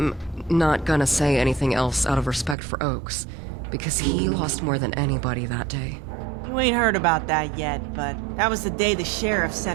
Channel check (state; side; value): drops out; left; at 2.6 s